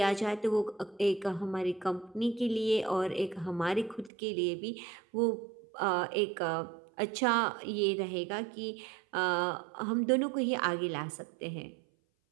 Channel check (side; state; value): left; drops out; at 4.1 s